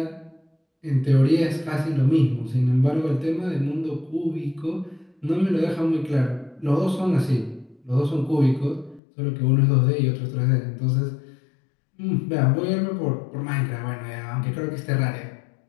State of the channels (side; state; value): right; drops out; at 9.0 s